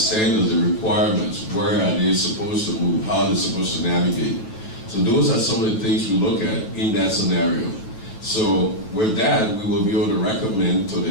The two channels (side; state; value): right; late; 9.0 ms